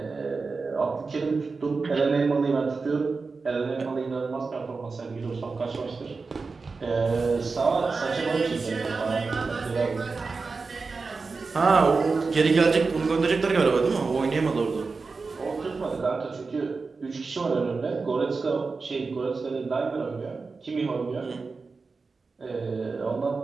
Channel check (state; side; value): quieter; left; 4.3 dB